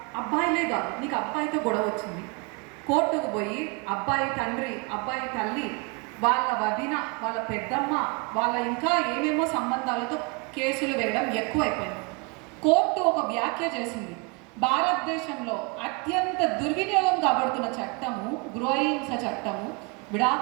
అబ్బాయిలే కాదు, నీకు అబ్బాయితో గొడవ వచ్చింది, కోర్టుకు పోయి అబ్బాయి తండ్రి, అబ్బాయి తల్లి, వాళ్ళ వదిన, వాళ్ళ పెద్దమ్మ, వాళ్ళ ఇంకా ఏమేమో సంబంధాలతో కేసులు వేయడం ఎక్కువైపోయింది. కోర్టు ఒక వ్యాఖ్య చేసింది, భారతదేశంలో అత్యంత దుర్వినియోగం కాబడుతున్న చట్టము గృహహింస చట్టము,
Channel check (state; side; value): quieter; left; 31.5 dB